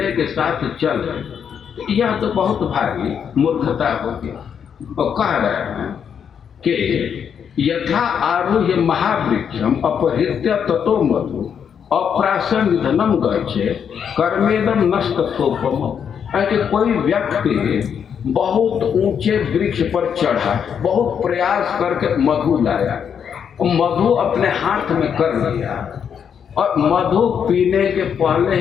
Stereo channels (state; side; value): quieter; right; 7.7 dB